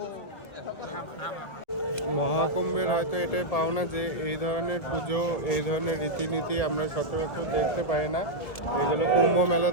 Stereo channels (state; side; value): late; right; 2.0 ms